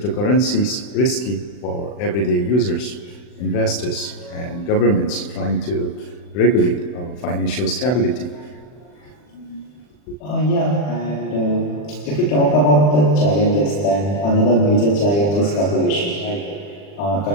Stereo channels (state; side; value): late; right; 40 ms